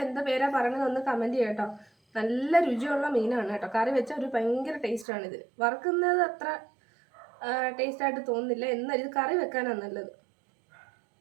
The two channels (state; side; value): drops out; left; at 5.1 s